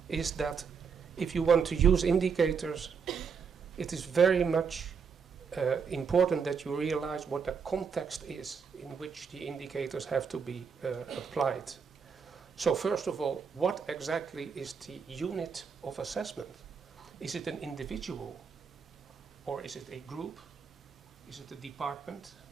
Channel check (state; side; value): quieter; left; 6.1 dB